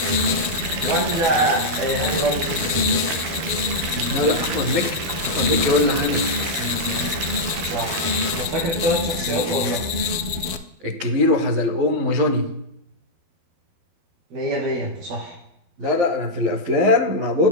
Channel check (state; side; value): late; left; 12 ms